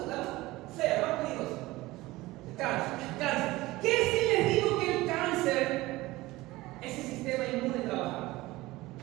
la fea, más peligrosa. El cáncer. ¿Qué si les digo que el cáncer es el sistema inmune trabajando?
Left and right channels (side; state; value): left; quieter; 19.1 dB